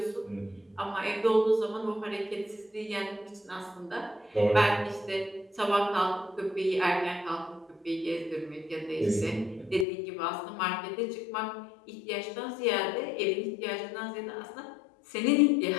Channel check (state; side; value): drops out; right; at 9.9 s